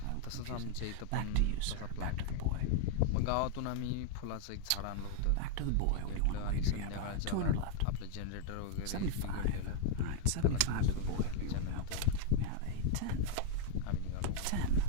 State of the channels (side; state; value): both; different; correlation -0.01